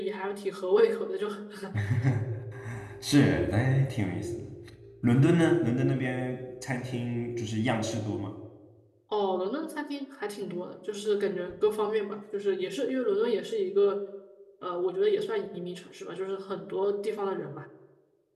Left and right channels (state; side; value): identical; both; correlation 1.00